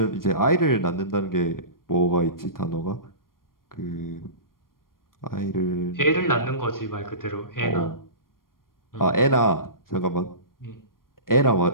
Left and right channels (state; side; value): late; right; 0.91 ms